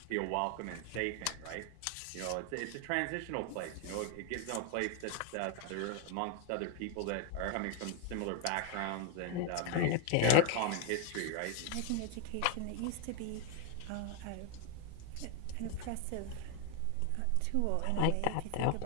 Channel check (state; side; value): different; both; correlation 0.00